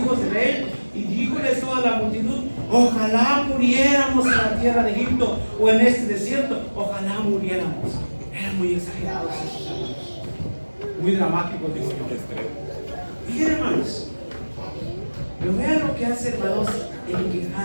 de Israel, y díjoles toda la multitud: ojalá muriéramos en la tierra de Egipto o en este desierto, ojalá muriéramos. Eran muy exagerados esos hermanos, muy dramáticos, digo yo. Miren, hermanos, pero vean lo que hace, hermanos, el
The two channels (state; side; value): inverted; both; correlation -1.00